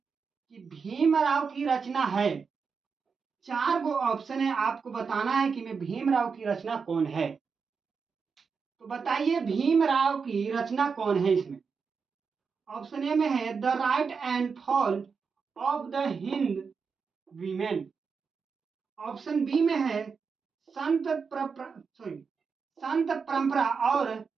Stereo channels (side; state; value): left; quieter; 5.5 dB